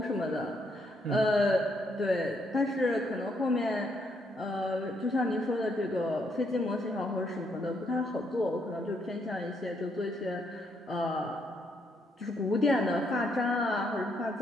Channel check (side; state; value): both; normal; correlation 0.74